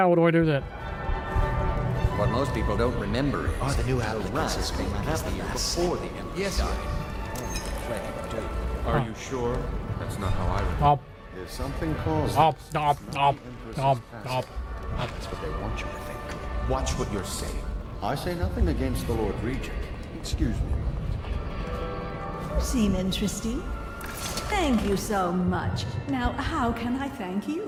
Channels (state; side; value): identical; both; correlation 1.00